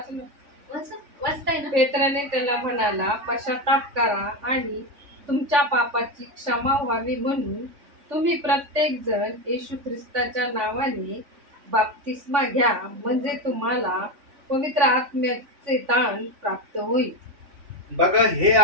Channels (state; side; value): late; left; 3.5 ms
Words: वाचताय ना. पेत्राने त्याला म्हणाला, पश्चाताप करा आणि तुमच्या पापाची क्षमा व्हावी म्हणून तुम्ही प्रत्येक जण येशू ख्रिस्ताच्या नावाने बाप्तिस्मा घ्या, म्हणजे तुम्हाला पवित्र आत्म्याचे दान प्राप्त होईल. बघा, हे